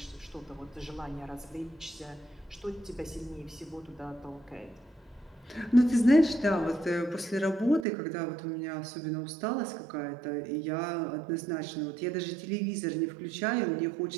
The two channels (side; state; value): left; drops out; at 7.9 s